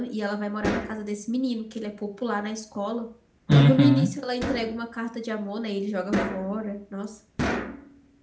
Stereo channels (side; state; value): both; identical; correlation 1.00